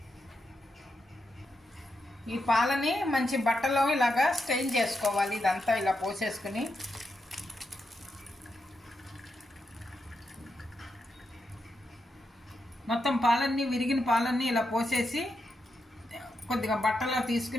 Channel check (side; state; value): both; normal; correlation 0.85